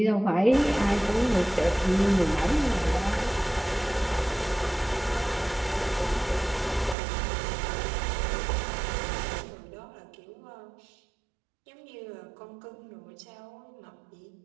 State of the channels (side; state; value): left; drops out; at 7.0 s